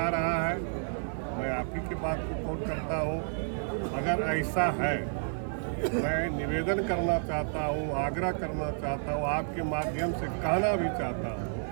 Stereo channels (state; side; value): silent; left; digital silence